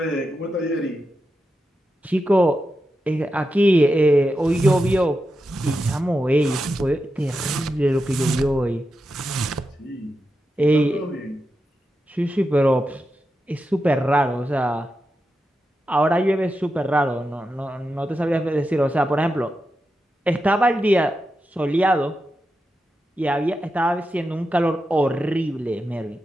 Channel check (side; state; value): both; normal; correlation 0.89